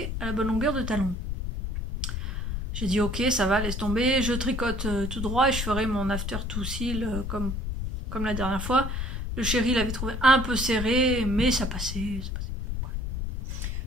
à la bonne longueur de talon. J'ai dit ok, ça va, laisse tomber, je tricote tout droit et je ferai mon after to seal comme la dernière fois. Le chéri l'avait trouvé un peu serré, mais ça passait.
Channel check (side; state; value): left; noise; rumble, 4 dB below the sound